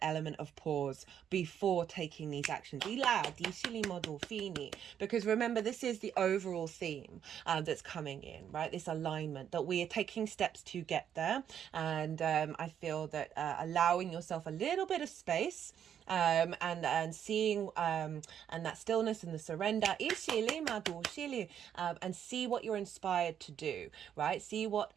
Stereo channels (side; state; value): left; quieter; 9.1 dB